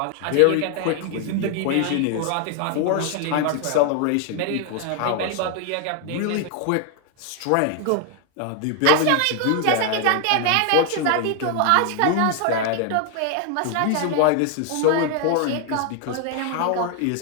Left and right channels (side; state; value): both; different; correlation 0.00